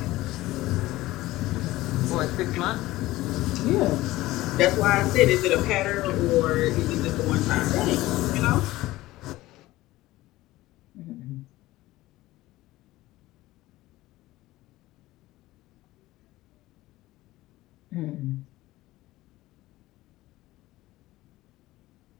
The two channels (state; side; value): quieter; right; 17.5 dB